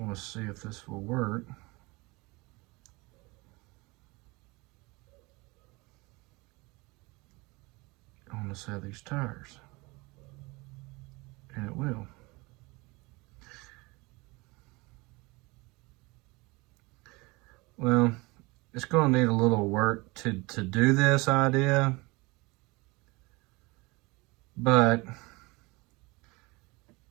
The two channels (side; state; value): left; quieter; 24.7 dB